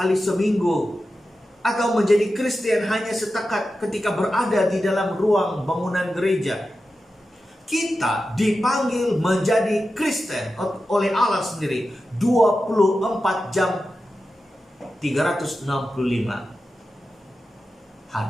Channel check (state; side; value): normal; both; correlation 0.92